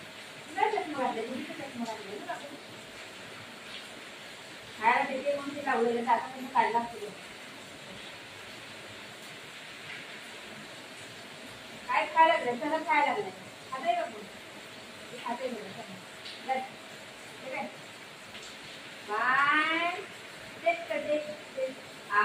चष्मा घातले चष्मा घातले खायला देते म्हणून ते लावलेलं आता तुम्ही काढला असतो काय खायला लागलं सगळं खायला लागलंय खाते का कोण खाते बघ बाय तेच करते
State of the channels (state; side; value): identical; both; correlation 1.00